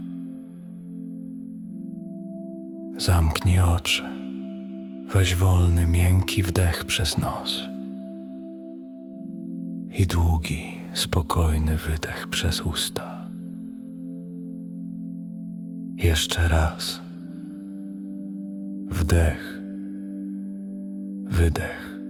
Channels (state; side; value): identical; both; correlation 1.00